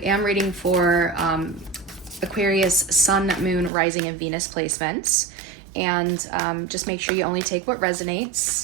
am reading for Aquarius Sun, Moon, Rising, and Venus placements. And just make sure you only take what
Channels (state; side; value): drops out; left; at 3.7 s